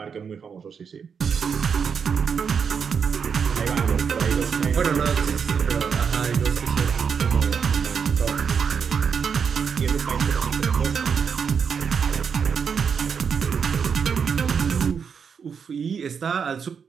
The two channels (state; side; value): quieter; left; 6.5 dB